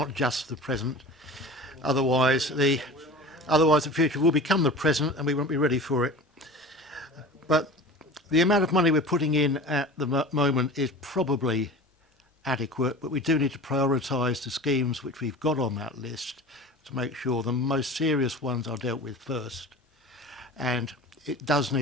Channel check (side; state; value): both; normal; correlation 0.36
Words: just the present. Otherwise, the future will become the present, and we won't be ready for it. But the amount of money we're putting in at the moment is probably adequate, but we do need to prioritise the schemes which we've got on that list to make sure the most serious ones are dealt with first. And it does